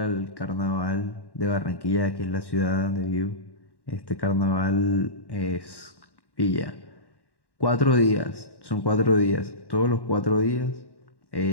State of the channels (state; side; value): late; right; 1.1 ms